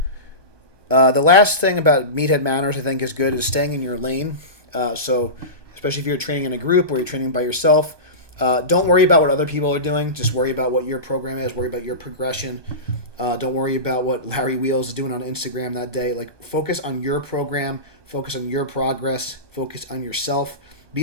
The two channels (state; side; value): late; left; 1.2 ms